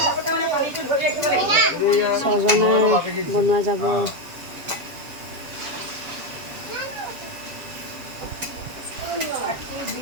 ছজনা বনোৱা যাব।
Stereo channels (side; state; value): left; late; 7.3 ms